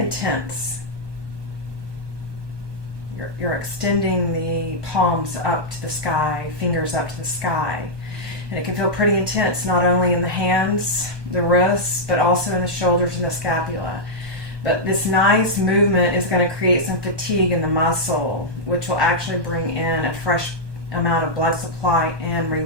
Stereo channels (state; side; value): late; left; 1.2 ms